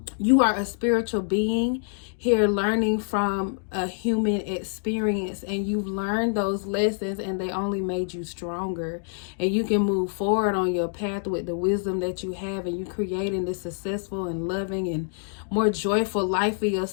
spiritual being here learning from a human experience, and you've learned those lessons and they only made you stronger, and you can move forward on your path with the wisdom that you have, and you're creating this successful and loving and more joyful life for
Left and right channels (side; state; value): right; silent; digital silence